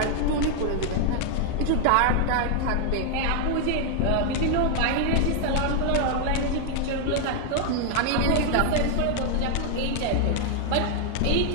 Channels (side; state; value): both; different; correlation 0.00